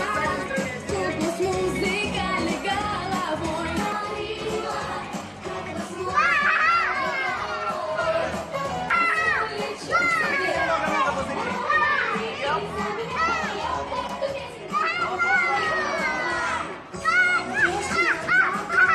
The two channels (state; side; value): identical; both; correlation 1.00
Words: куклу с музыкальной головой.